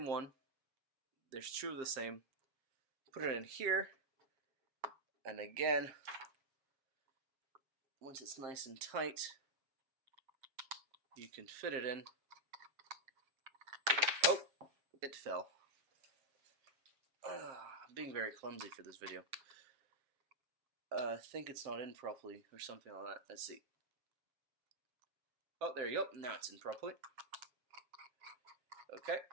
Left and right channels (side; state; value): left; late; 7.6 ms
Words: one. There's two of the same. Put it in here. And again, once it's nice and tight, you can fit it in. Oh, it fell. I'm being very clumsy for this video. I think it's not in properly or something like that. Let's see. Oh, there you go. Now it's in properly. Okay.